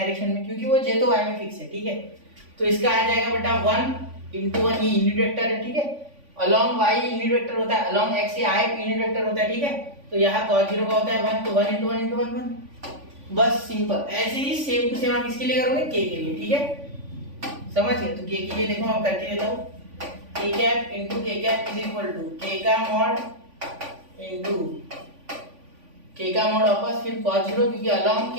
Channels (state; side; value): late; left; 3.5 ms